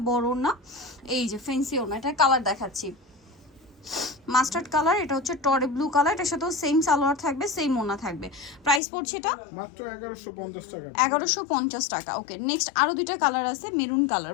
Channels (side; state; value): right; drops out; at 8.8 s